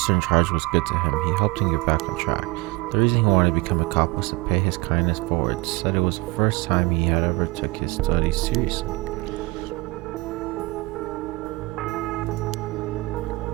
in charge was good to him. He helped him get back on track. The reason he wanted to become a cop was to pay his kindness forward. Said it was the first time he had ever took his studies seriously.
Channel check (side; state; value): left; quieter; 23.1 dB